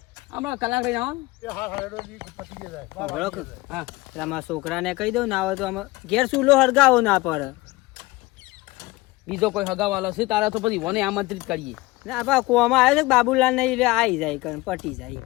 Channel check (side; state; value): right; quieter; 20.9 dB